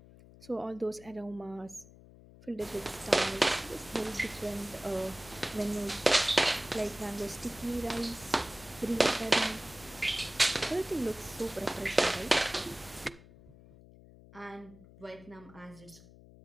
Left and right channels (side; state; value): left; noise; hum, 21 dB below the sound